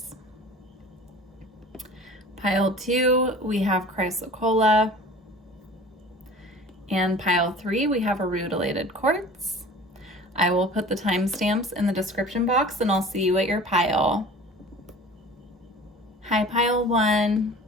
Pile 2, we have Chrysocolla. And pile 3, we have a rutilated quartz. I will put the timestamps in the description box and I'll see you at your pile. Hi, pile 1.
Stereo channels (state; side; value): normal; both; correlation 0.42